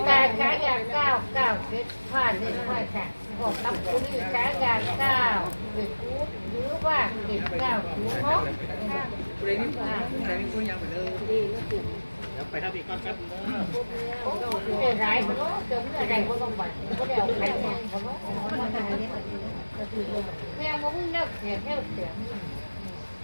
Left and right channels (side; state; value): both; inverted; correlation -1.00